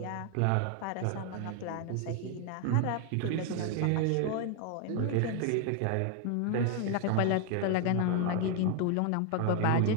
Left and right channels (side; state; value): both; different; correlation 0.00